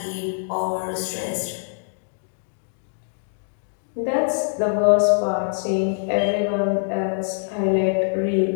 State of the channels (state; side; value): silent; right; digital silence